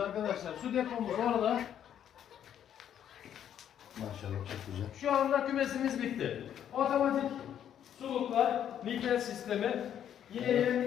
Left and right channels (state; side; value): quieter; right; 9.8 dB